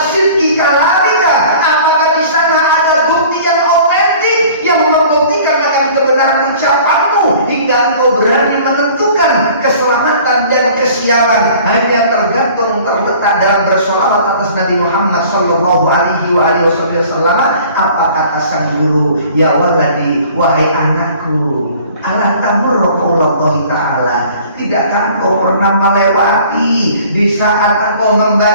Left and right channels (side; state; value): both; inverted; correlation -0.49